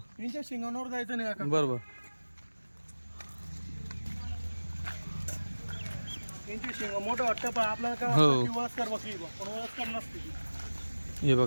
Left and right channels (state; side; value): inverted; both; correlation -1.00